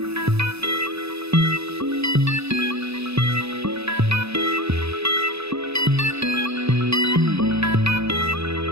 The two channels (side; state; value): left; late; 0.79 ms